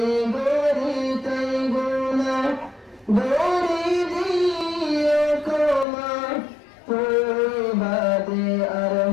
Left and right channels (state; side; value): drops out; right; at 5.9 s